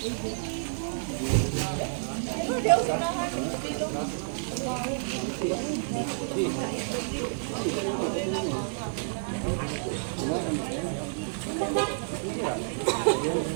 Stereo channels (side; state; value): left; silent; digital silence